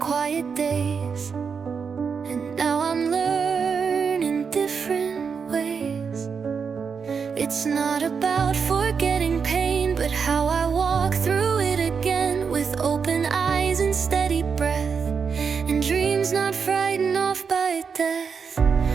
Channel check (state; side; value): quieter; left; 6.0 dB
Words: quiet days, and now I'm learning different ways. It's not about forgetting pain, but how I walk through it again, with open eyes and steady breath, and dreams not frightened off by death.